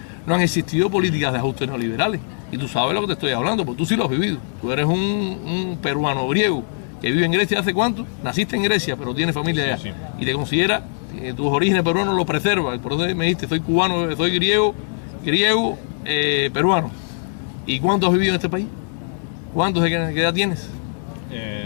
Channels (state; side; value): silent; right; 65 dB below the other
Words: no han existido políticas de ajuste neoliberales. Y tú sabes lo que te estoy hablando, porque tú sí lo has vivido. Tú eres un peruano griego que vive en Grecia ¿hace cuánto? Naciste en Grecia, pero tienes familia allá. Sí. Y te considera tus orígenes peruanos lo preserva. Por eso me dijiste, soy cubano, soy griego, peruano. ¿Y cuánto has vivido en este país? ¿Qué edad tienes?